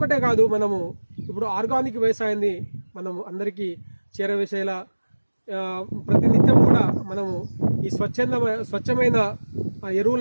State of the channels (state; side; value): inverted; both; correlation -1.00